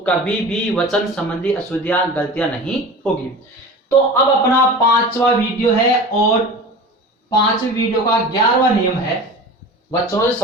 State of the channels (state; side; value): normal; both; correlation 0.35